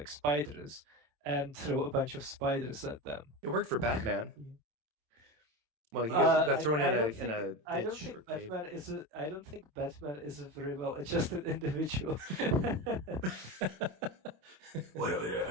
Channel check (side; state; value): left; late; 27 ms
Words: spiders and throw a bunch of spiders at them. It worked for Batman. Well, he got thrown in a ditch or cave. I don't think Batman is a very well adjusted individual.